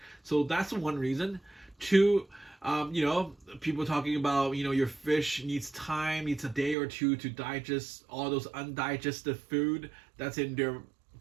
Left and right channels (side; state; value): left; drops out; at 6.8 s